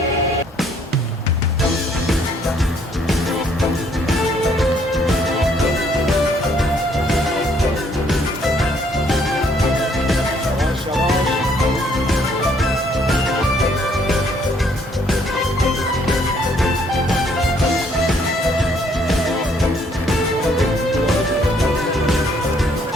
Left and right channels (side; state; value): both; normal; correlation 0.66